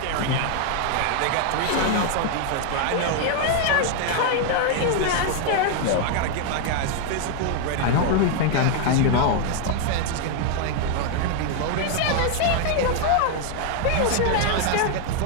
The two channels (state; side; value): different; both; correlation 0.00